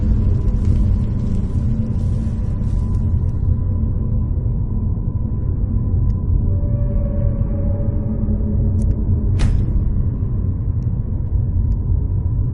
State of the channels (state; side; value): identical; both; correlation 1.00